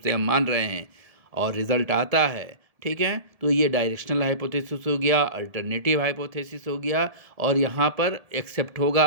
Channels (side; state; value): left; late; 1.7 ms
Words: से हम मान रहे हैं और रिजल्ट आता है, ठीक है, तो ये डायरेक्शनल हाइपोथेसिस हो गया, अल्टरनेटिव हाइपोथेसिस हो गया, और यहाँ पर एक्सेप्ट